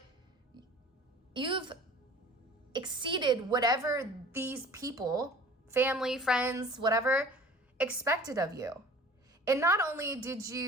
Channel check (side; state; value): both; normal; correlation 0.45